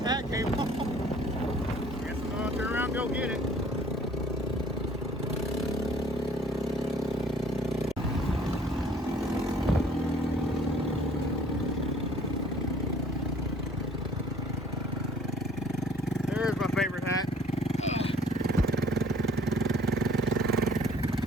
Hat came off. Guess I'm gonna turn around and go get it. There's my favorite hat.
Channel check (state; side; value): normal; both; correlation 0.55